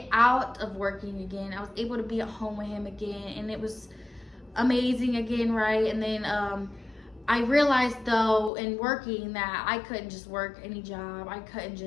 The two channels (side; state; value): right; drops out; at 8.5 s